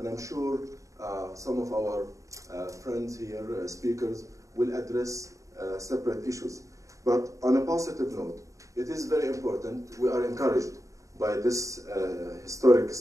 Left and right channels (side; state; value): left; late; 0.16 ms